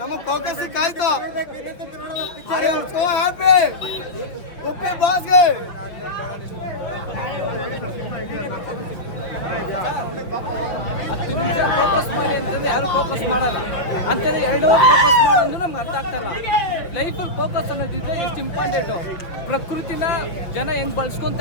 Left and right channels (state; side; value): late; right; 5.7 ms